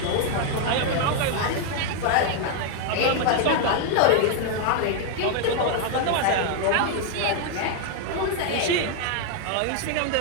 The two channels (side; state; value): both; different; correlation 0.00